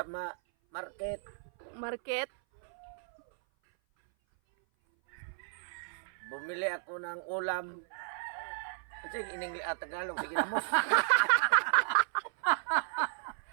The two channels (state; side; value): silent; left; 55 dB below the other